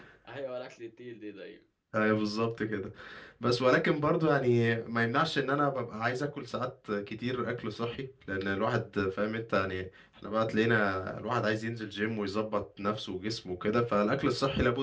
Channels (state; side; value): identical; both; correlation 1.00